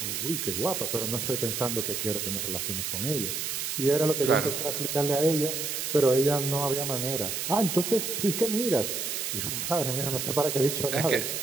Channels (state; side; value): noise; right; hiss, 2 dB below the sound